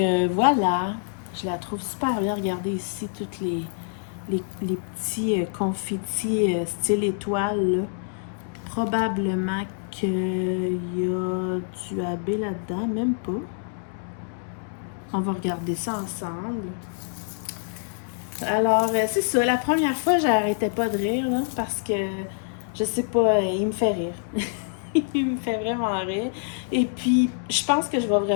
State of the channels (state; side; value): silent; right; digital silence